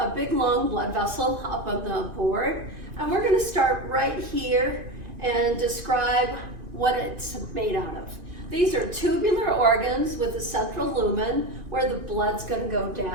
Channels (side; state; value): left; late; 2.5 ms